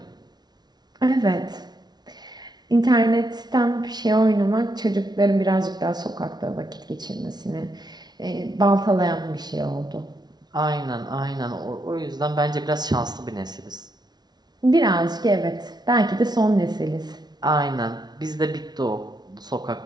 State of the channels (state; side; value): late; left; 0.19 ms